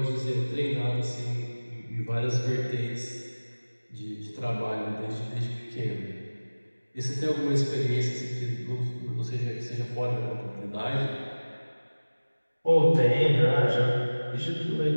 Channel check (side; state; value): both; inverted; correlation -1.00